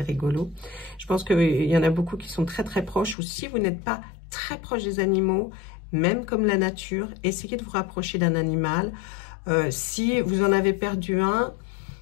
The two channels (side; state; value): right; drops out; at 3.2 s